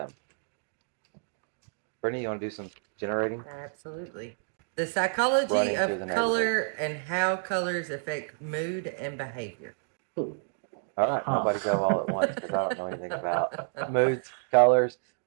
Brittany, you want to do some generating? Absolutely. The psychology Running through of the neighborhood. color and how colors affect mood and behavior. All right, Huh. nobody go all at once because I don't know anything about moods, colors.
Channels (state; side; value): silent; left; digital silence